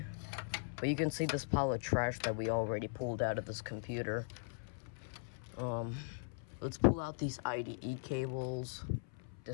But you can see this pile of trash that we already pulled out of this computer. Let's pull out these IDE cables,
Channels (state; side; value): silent; right; 51 dB below the other